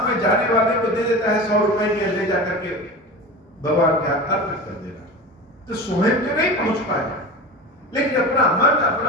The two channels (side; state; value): both; normal; correlation 0.30